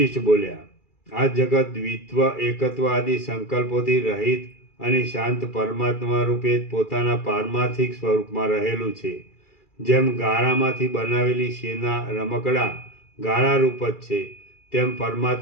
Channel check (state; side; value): late; right; 2.3 ms